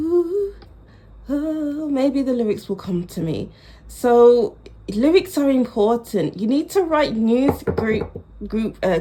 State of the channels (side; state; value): both; identical; correlation 1.00